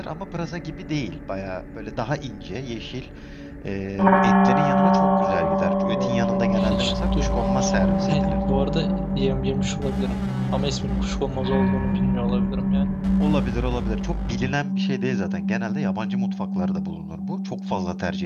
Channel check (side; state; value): both; identical; correlation 1.00